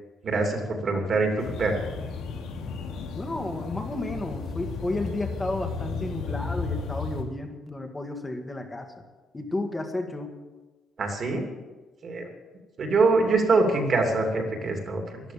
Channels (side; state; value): both; normal; correlation 0.77